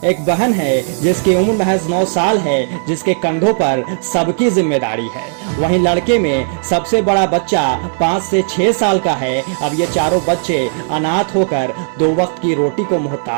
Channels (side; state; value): left; silent; 66 dB below the other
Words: एक बहन है जिसकी उम्र महज 9 साल है, जिसके कंधों पर सबकी जिम्मेदारी है। वहीं लड़के में सबसे बड़ा बच्चा 5 से 6 साल का है। अब ये चारों बच्चे अनाथ होकर 2 वक्त की रोटी को